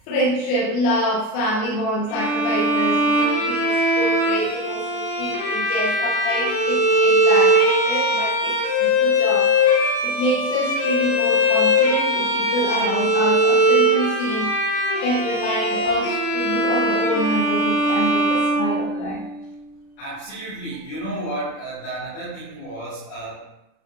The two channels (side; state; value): right; late; 37 ms